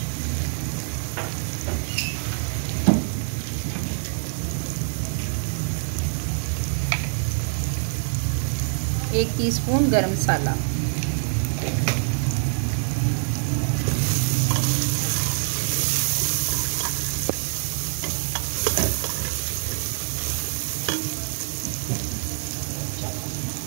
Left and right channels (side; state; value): left; silent; 62 dB below the other